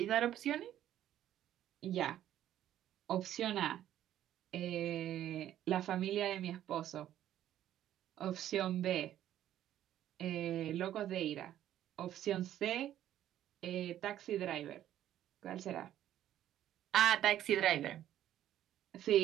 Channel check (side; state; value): left; quieter; 11.9 dB